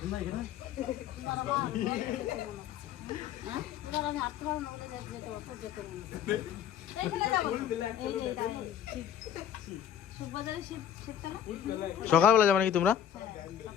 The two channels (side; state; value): right; quieter; 9.6 dB